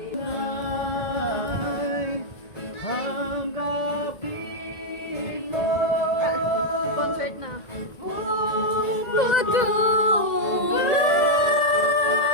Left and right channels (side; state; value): right; late; 1.9 ms